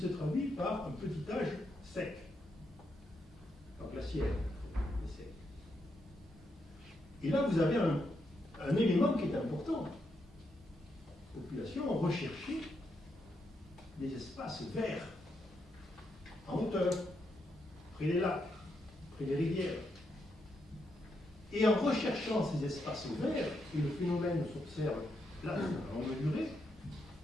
traduit par un petit âge sec, pas glaciaire, mais sec. Et là, vous avez un élément qui est important. Les populations ont recherché des espaces verts, en hauteur, près des lacs, près des rivières. Et en recherchant ces espaces verts, et le phénomène s'observe là, à longue durée,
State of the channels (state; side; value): normal; both; correlation 0.81